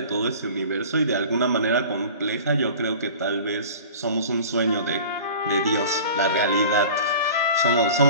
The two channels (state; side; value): inverted; both; correlation -0.41